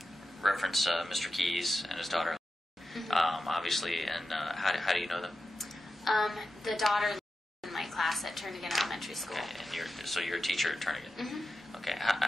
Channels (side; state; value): both; normal; correlation 0.91